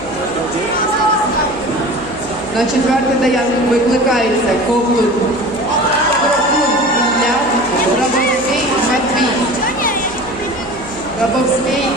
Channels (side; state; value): left; noise; hum, 20 dB below the sound